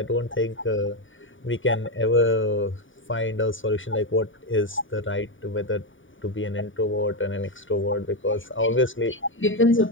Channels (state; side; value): late; right; 0.57 ms